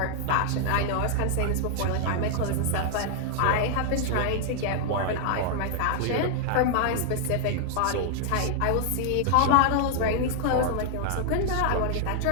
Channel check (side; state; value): both; different; correlation 0.00